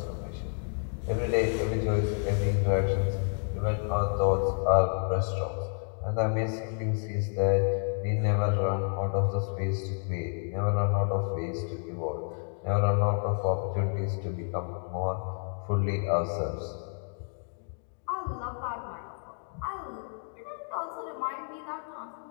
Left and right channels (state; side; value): silent; right; 58 dB below the other